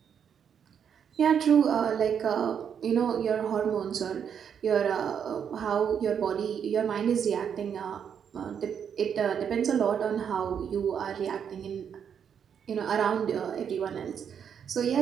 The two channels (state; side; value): quieter; left; 7.8 dB